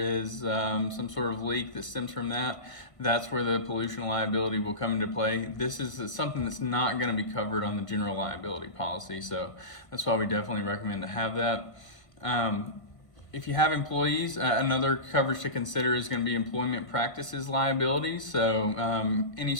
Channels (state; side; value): late; right; 1.5 ms